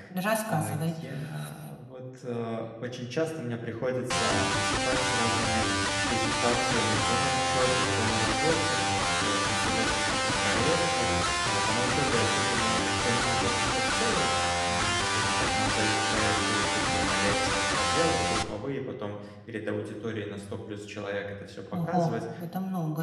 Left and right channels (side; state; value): both; identical; correlation 1.00